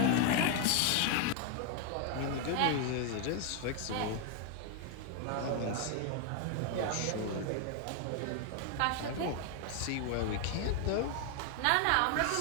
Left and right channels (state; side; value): different; both; correlation 0.00